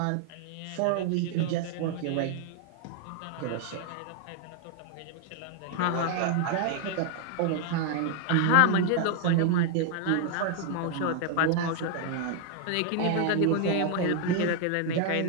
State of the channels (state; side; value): different; both; correlation 0.00